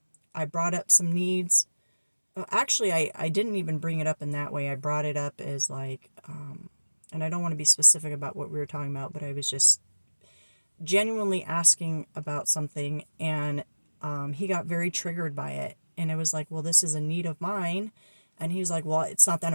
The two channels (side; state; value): both; inverted; correlation -1.00